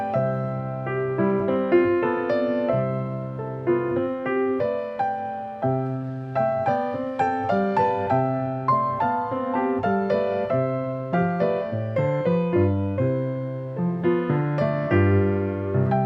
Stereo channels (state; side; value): identical; both; correlation 1.00